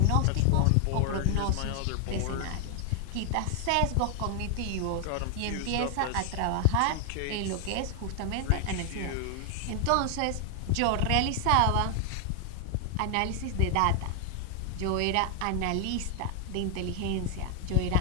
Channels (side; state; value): both; different; correlation 0.00